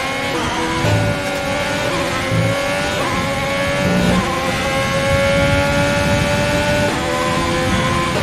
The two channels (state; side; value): identical; both; correlation 1.00